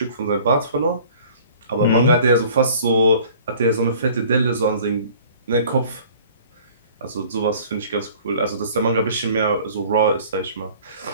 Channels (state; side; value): inverted; both; correlation -0.50